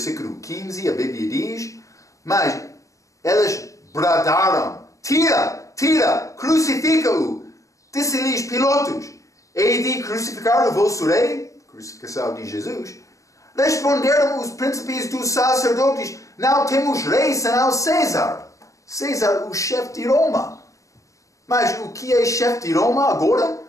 15, a Bíblia diz, mas eles bradaram, tira, crucifica-o. Disse-lhes Pilatos, hei de crucificar o vosso rei? Crucificação de Jesus. Responderam os príncipes dos sacerdotes, não temos rei senão César. César, o chefe de Roma. Mas o que é chefe de Roma agora?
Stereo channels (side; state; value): right; late; 0.16 ms